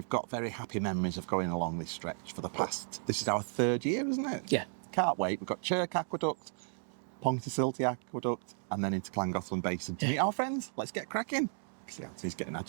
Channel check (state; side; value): silent; left; 55 dB below the other